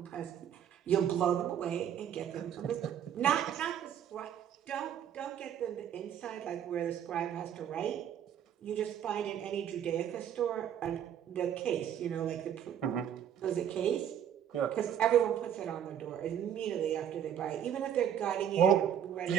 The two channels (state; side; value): quieter; left; 9.5 dB